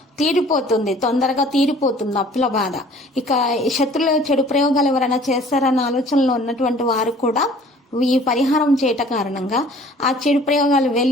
తొందరగా తీరిపోతుంది అప్పుల బాధ. ఇక శత్రుల చెడు ప్రయోగాలు ఎవరైనా చేస్తారన్న ఆలోచనలో ఉన్నటువంటి వారు కూడా ఈ పరిహారం చేయట కారణంగా ఆ చెడు ప్రయోగాలు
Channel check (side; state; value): both; normal; correlation 0.51